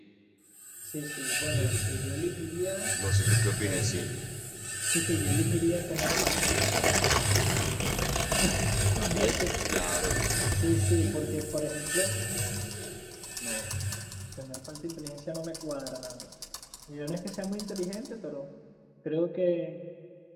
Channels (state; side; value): identical; both; correlation 1.00